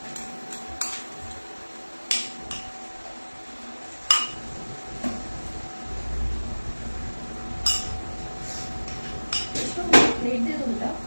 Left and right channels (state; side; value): inverted; both; correlation -1.00